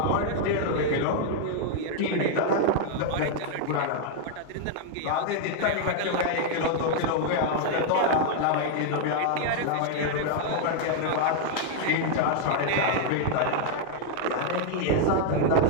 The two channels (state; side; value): different; both; correlation 0.00